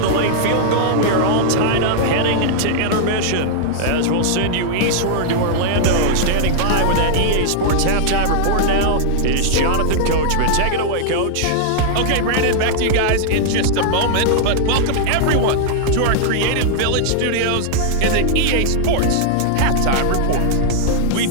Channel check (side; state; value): both; different; correlation -0.01